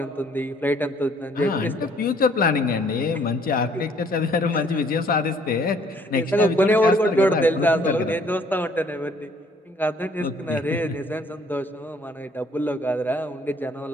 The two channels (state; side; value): normal; both; correlation 0.61